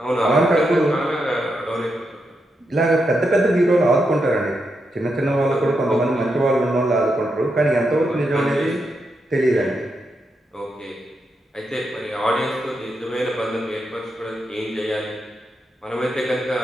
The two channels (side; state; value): both; normal; correlation 0.84